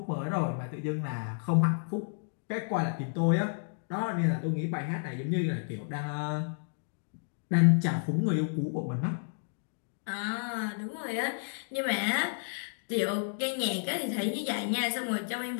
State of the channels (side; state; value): right; silent; digital silence